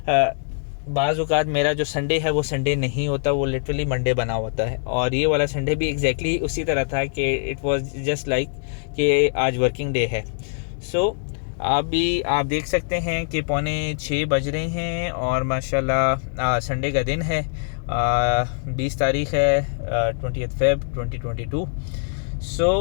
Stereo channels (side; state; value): right; silent; digital silence